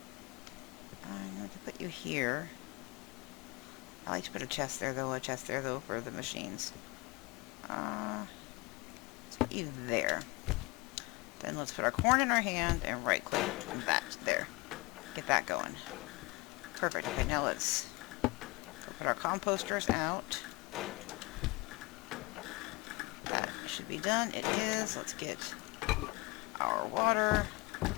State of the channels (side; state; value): right; quieter; 24.9 dB